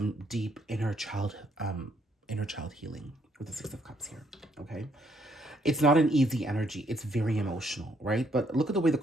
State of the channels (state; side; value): normal; both; correlation 0.71